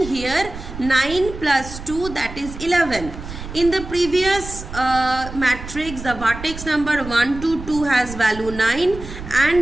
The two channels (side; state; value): right; noise; rumble, 11 dB below the sound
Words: here 9 plus 2, that is 11. In the previous matrix, the vertex number 1 to 2 has value 9